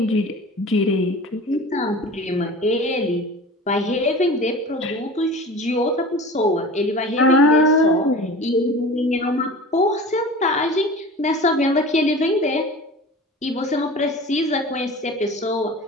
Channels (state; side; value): normal; both; correlation 0.37